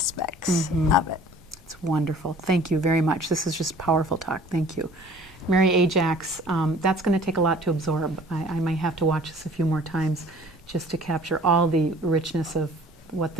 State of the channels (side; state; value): both; normal; correlation 0.50